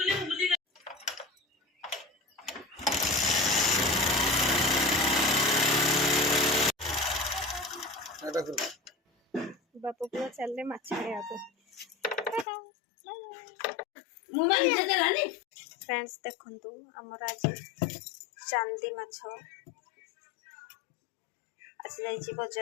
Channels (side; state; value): right; drops out; at 12.5 s